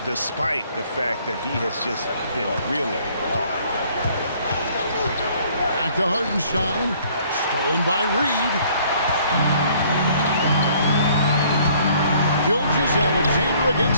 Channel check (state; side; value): inverted; both; correlation -0.59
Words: despite the fact that he has just been really hard. Back to Hartenstein. Stolen by Reed. Gilgeous-Alexander